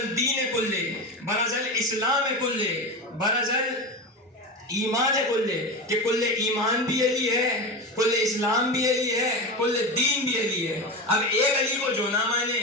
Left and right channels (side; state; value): both; normal; correlation 0.22